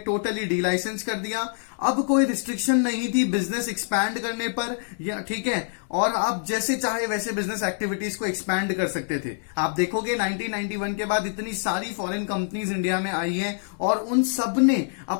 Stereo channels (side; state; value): right; silent; digital silence